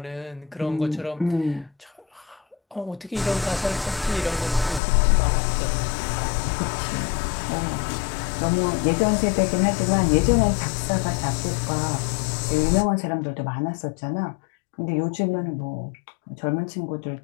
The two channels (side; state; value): right; drops out; at 4.8 s